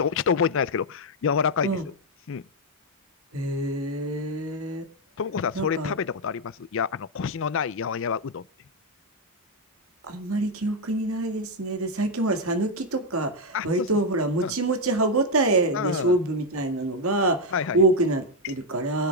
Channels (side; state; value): both; normal; correlation 0.02